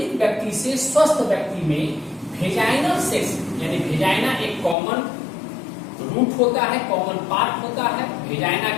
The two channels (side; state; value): right; drops out; at 4.8 s